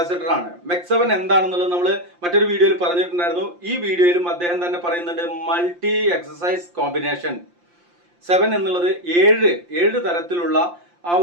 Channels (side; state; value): left; late; 5.7 ms